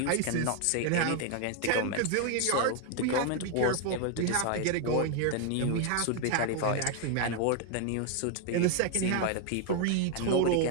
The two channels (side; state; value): both; different; correlation 0.01